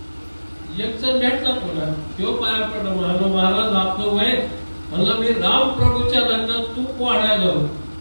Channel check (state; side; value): inverted; both; correlation -1.00